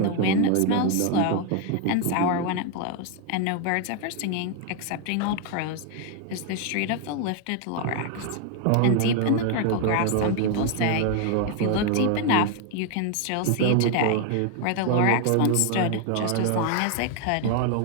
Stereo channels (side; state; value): both; different; correlation 0.00